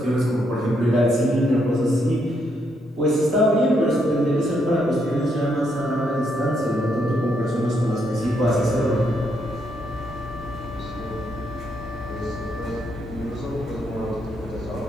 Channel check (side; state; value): both; normal; correlation 0.76